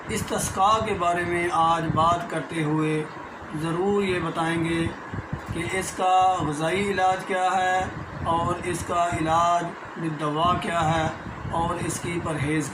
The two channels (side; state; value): both; identical; correlation 1.00